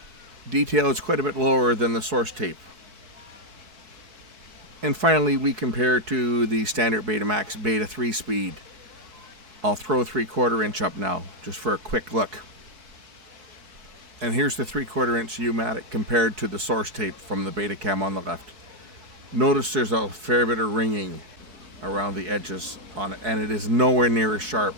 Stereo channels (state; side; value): late; left; 4.7 ms